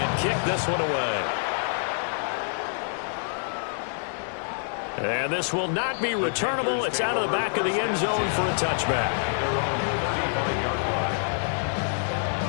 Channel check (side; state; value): right; silent; digital silence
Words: kick this one away. And this will not be returnable. It's out of the back of the end zone for a touchback.